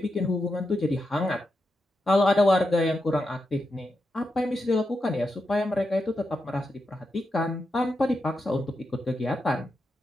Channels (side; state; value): both; normal; correlation 0.87